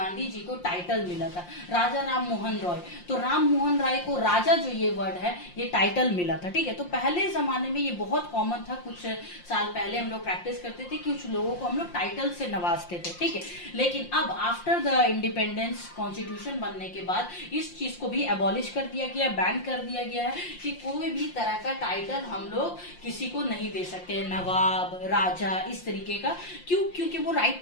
जी को टाइटल मिला था, राजा राम मोहन रॉय। तो राम मोहन राय को राजा जो ये वर्ड है ये टाइटल मिला था, ठीक है। तो पहले जमाने में ये बहुत कॉमन था, कुछ साल पहले हम लोग प्रैक्टिस करते थे कि कुछ लोगों को हम लोग टाइटल से नवाजते थे, ठीक है। लेकिन अब आफ्टर द इंडिपेंडेंस कॉन्स्टिट्यूशन बनने के बाद इस चीज को भी एबॉलिश कर दिया गया, बैन कर दिया गया है कि कोई भी तरह का टाइटल हम लोग किसी को नहीं दे सकते, नवाब, राजा, इस तरीके का। क्यों? क्योंकि वो राइट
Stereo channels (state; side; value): late; right; 5.7 ms